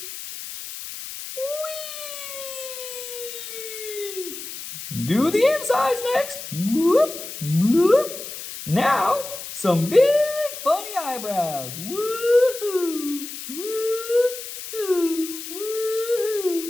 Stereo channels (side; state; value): left; noise; hiss, 10 dB below the sound